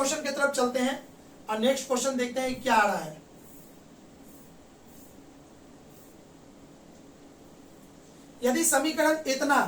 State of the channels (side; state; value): both; identical; correlation 1.00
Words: की तरफ चलते हैं और नेक्स्ट क्वेश्चन देखते हैं क्या आ रहा है। यदि समीकरण इतना